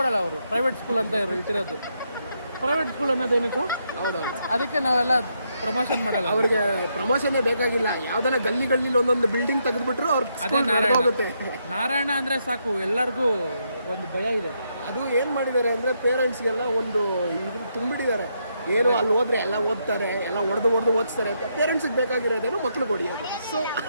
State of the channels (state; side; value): inverted; both; correlation -0.78